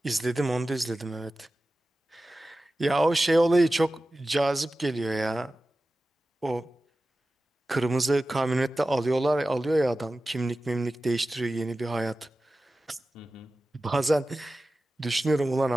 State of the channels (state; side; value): normal; both; correlation 0.95